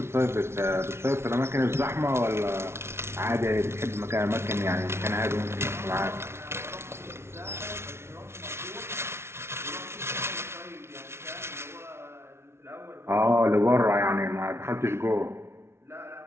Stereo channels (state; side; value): late; left; 0.12 ms